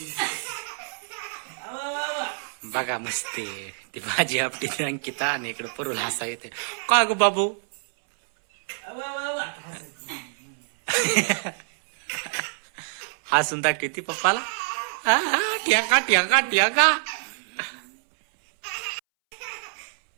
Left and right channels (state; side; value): silent; left; 61 dB below the other